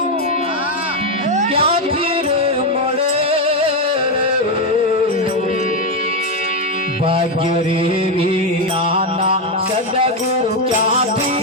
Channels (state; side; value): normal; both; correlation 0.06